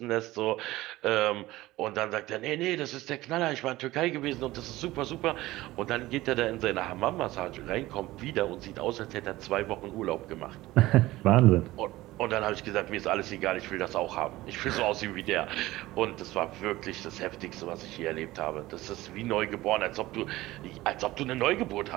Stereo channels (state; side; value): quieter; left; 17.7 dB